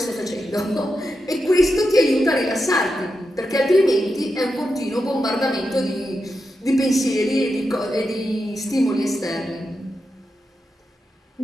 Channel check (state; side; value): normal; both; correlation 0.88